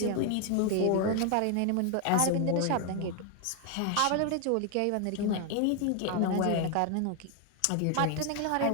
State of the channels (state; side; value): different; both; correlation 0.00